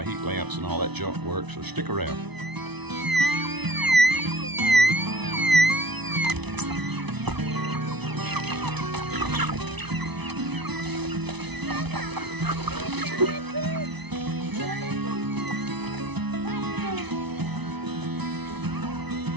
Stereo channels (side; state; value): left; late; 0.99 ms